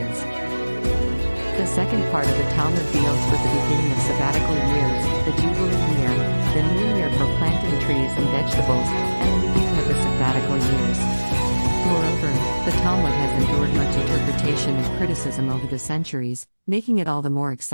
The second part of the Talmud deals with the beginning of sabbatical years, the Jubilee year, the new year for planting trees and vegetables, and the beginning of the sabbatical years. Moreover, the Talmud has endured much interpretation and criticism over the centuries, making it all the more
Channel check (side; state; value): both; inverted; correlation -1.00